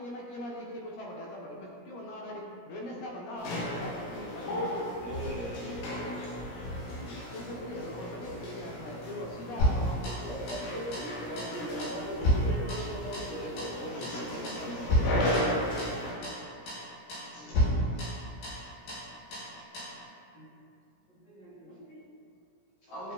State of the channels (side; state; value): right; late; 17 ms